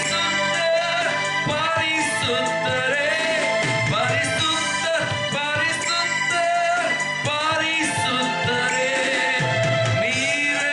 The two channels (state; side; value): identical; both; correlation 1.00